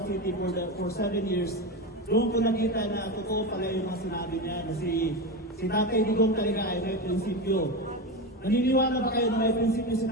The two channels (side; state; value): both; normal; correlation 0.19